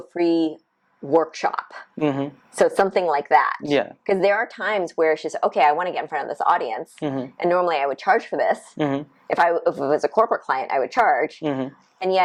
free workshop? So something like that. Yeah. Because there are times where it's just, okay, I want to get in front of this audience. And normally I would charge for this. If it was a corporate client, I would charge. And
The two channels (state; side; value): identical; both; correlation 1.00